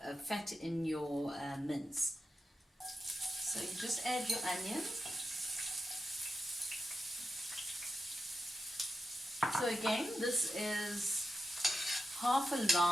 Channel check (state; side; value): normal; both; correlation 0.89